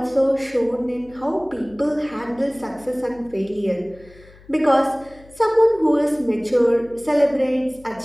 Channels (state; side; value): noise; left; hum, 24 dB below the sound